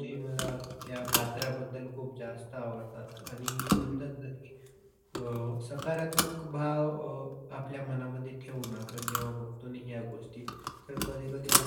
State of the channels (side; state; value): both; identical; correlation 1.00